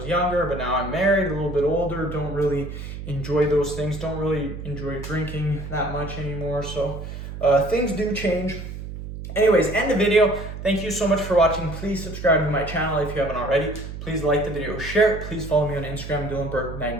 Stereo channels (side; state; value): right; noise; hum, 9 dB below the sound